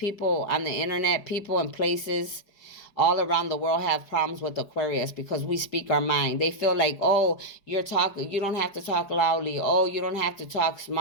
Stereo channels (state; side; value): late; right; 4.8 ms